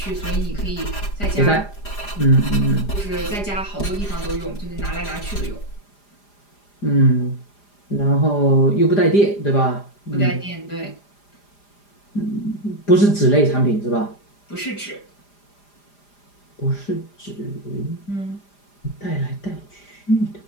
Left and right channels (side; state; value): right; late; 4.9 ms